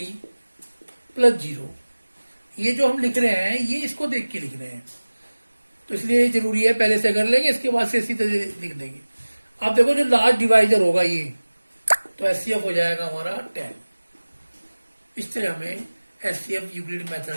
प्लस 0। ये जो हम लिख रहे हैं ये इसको देख के लिख रहे हैं, तो इसलिए जरूरी है पहले से कर लेंगे, इसके बाद से इसी तरह लिख देंगे। अब देखो जो लास्ट डिवाइजर होगा ये, तो एचसीएफ हो जाएगा हमारा 10। इस तरह हमें एचसीएफ यूक्लिड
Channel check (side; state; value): both; inverted; correlation -1.00